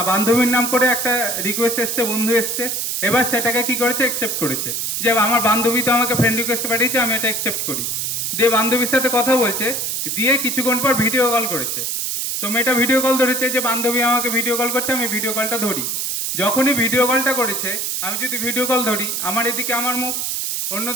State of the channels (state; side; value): noise; right; hiss, 1 dB below the sound